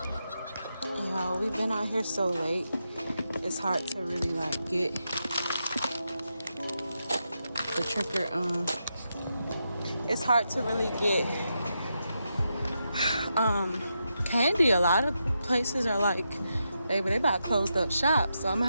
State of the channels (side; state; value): both; inverted; correlation -0.85